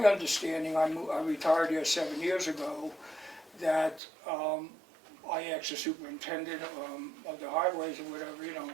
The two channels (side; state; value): left; drops out; at 4.0 s